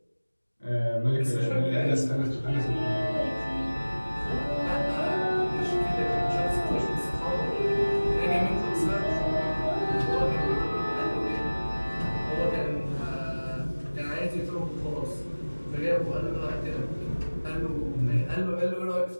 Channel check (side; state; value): both; inverted; correlation -1.00